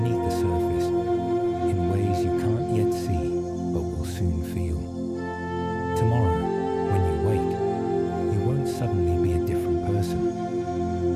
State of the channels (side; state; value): both; identical; correlation 1.00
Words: the surface, in ways you can't yet see, but will soon feel. Tomorrow, when you wake, you won't suddenly be a different